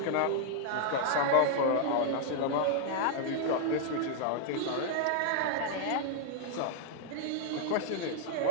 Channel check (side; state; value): both; different; correlation -0.01